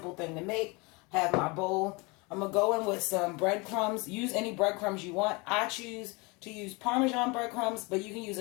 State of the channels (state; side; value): quieter; right; 27.5 dB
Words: thing to make. Have my bowl. I'm going to go in with some breadcrumbs. Use any breadcrumbs you want. I choose to use Parmesan breadcrumbs, but you can use